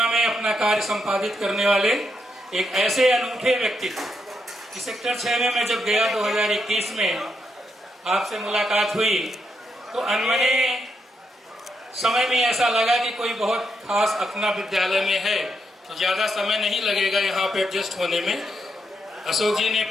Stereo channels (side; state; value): both; normal; correlation 0.80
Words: में अपना कार्य संपादित करने वाले एक ऐसे अनूठे व्यक्तित्व कि सेक्टर 6 में मैं जब गया 2021 में आपसे मुलाकात हुई तो अनमने समय में ऐसा लगा कि कोई बहुत खास अपना विद्यालय में है तो ज़्यादा समय नहीं लगेगा यहाँ पे एडजस्ट होने में। अशोक जी ने